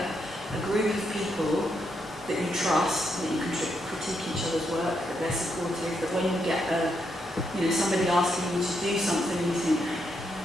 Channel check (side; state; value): both; normal; correlation 0.79